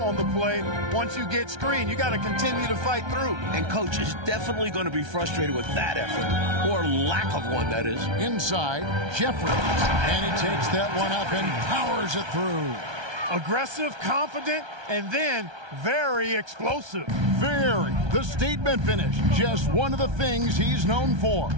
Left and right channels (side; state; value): left; late; 1.3 ms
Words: on the play once you get screened. You got to continue to fight through. And coach is definitely going to be frustrated with that effort. Or lack of one, that is. Inside, Jefferies. And he takes that one up and powers it through. Aggressive, confident, and then very explosive. Very. The statement finish. Just one of the things he's known for.